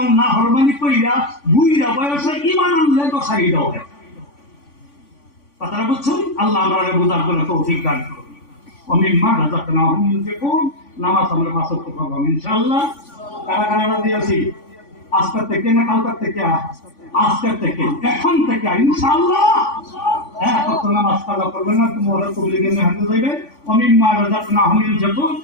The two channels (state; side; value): late; right; 3.5 ms